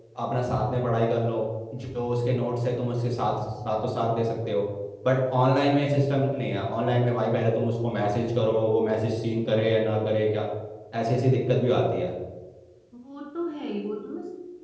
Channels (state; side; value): identical; both; correlation 1.00